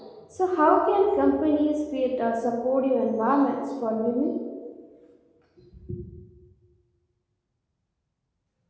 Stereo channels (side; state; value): both; identical; correlation 1.00